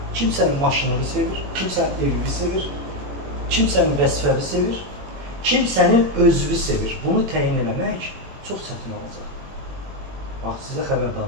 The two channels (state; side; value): late; left; 21 ms